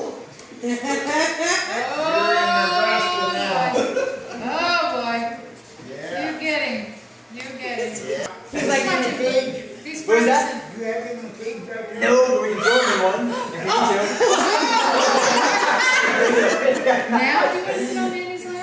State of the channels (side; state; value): both; identical; correlation 1.00